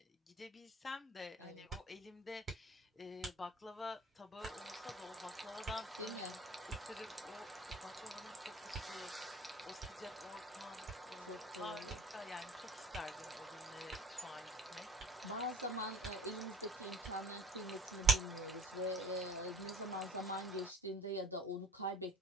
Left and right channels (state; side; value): normal; both; correlation 0.45